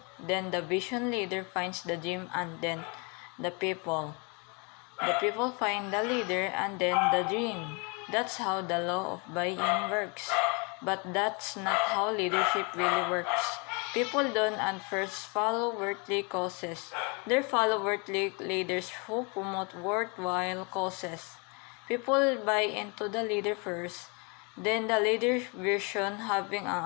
then the vision leader finds the dream and then the people. The people find the leader and then the dream. That's how the law of buy-in works. But that's not how leadership really works. People don't at first follow worldly causes. They follow worldly leaders who promote worthwhile causes. People buy into the leader first, then the leader's vision, having an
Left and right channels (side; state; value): right; quieter; 31.9 dB